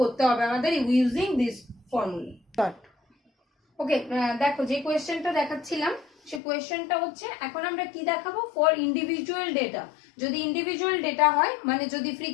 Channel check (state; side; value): drops out; right; at 6.4 s